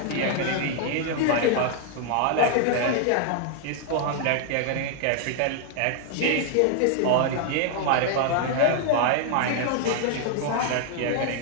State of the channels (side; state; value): both; different; correlation 0.00